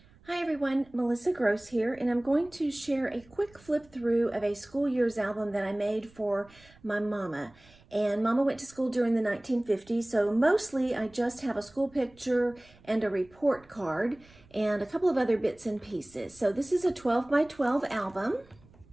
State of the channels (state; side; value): noise; right; rumble, 27 dB below the sound